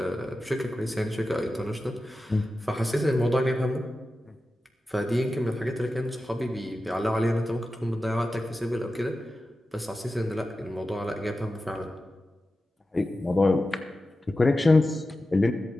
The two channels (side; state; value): both; normal; correlation 0.93